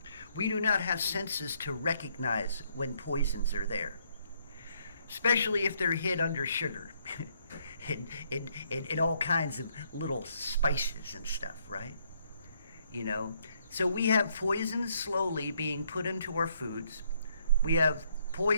We do not have senses to recognize when poisons are there, especially if they're hid under sugar and all kinds of little spices and stuff, right? So we have poisons slowly being put into our foods. We have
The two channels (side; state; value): both; inverted; correlation -0.70